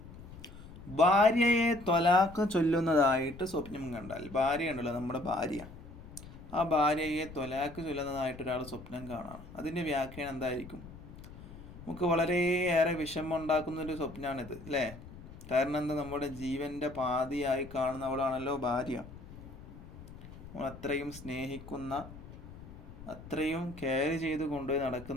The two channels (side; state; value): left; noise; rumble, 15 dB below the sound